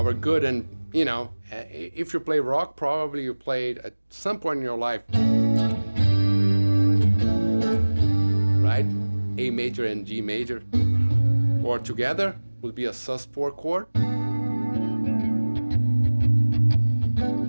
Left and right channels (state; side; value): inverted; both; correlation -1.00